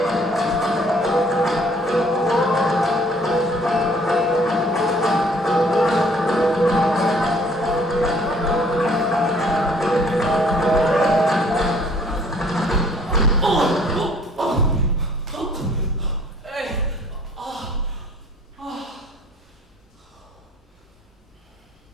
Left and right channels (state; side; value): normal; both; correlation 0.58